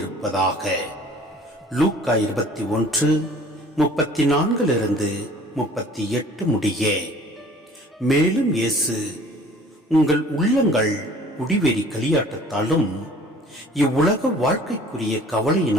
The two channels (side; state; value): both; normal; correlation 0.50